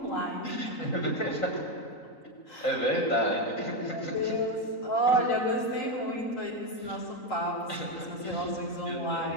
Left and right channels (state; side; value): late; right; 3.9 ms